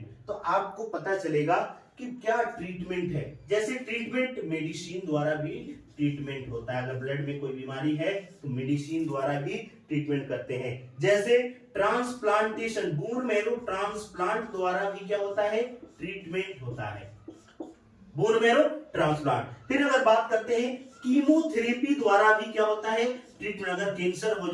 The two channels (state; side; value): identical; both; correlation 1.00